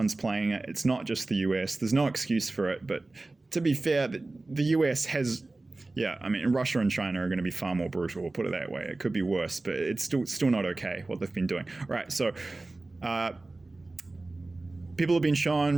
playing it. It's not just the US. There's no excuse for it. But to be fair, the US has, Russia and China are going to be far more brutal. We'll put it that way. It could be worse, but it's still not okay what they've been doing. All right, so people have been shown,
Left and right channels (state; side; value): quieter; left; 3.1 dB